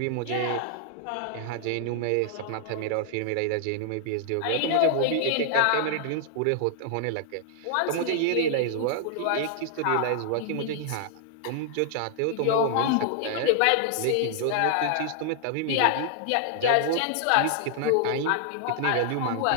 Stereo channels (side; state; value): both; different; correlation 0.00